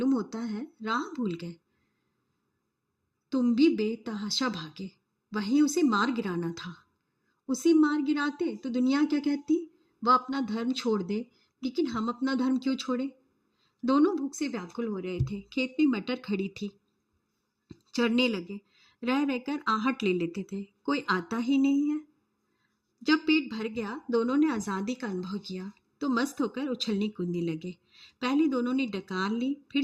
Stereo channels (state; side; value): identical; both; correlation 1.00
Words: होता है राह भूल गए। तुम भी बेतहाशा भागे। वहीं उसे मार गिराना था। उसे मार गिराते तो दुनिया क्या कहती? वह अपना धर्म छोड़ दे, लेकिन हम अपना धर्म क्यों छोड़े? दोनों भूख से व्याकुल हो रहे थे। खेत में मटर खड़ी थी। चढ़ने लगे। रह रहकर आहट ले लेते थे। कोई आता ही नहीं है। जब पेट भर गया, दोनों ने आज़ादी का अनुभव किया तो मस्त होकर उछलने कूदने लगे। पहले दोनों ने डकार ली, फिर